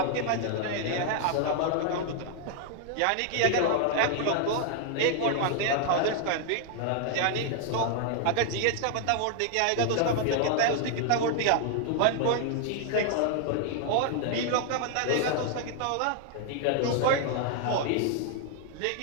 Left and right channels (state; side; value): different; both; correlation 0.00